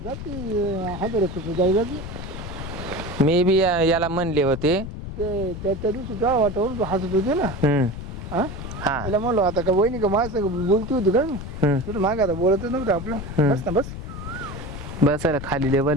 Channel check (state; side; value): noise; left; rumble, 9 dB below the sound